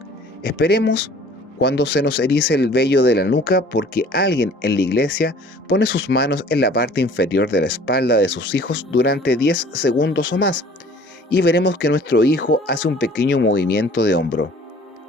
Esperemos cuando se nos erice el vello de la nuca porque alguien en la iglesia pone sus manos en la parte inferior de la espalda de sus hijos durante 10 segundos o más, y veremos que nuestro hijo hace un pequeño movimiento de hombro.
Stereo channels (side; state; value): both; normal; correlation 0.50